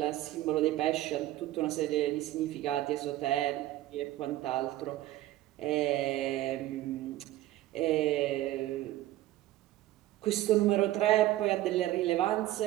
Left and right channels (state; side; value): quieter; left; 15.2 dB